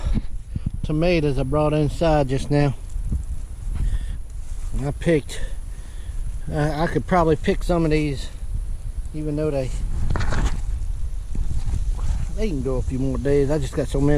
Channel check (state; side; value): identical; both; correlation 1.00